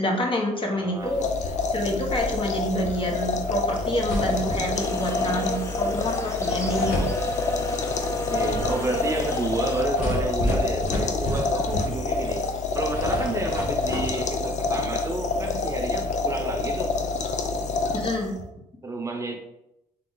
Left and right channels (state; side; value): normal; both; correlation 0.52